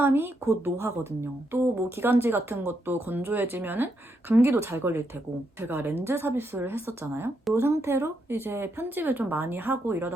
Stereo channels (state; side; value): normal; both; correlation 0.80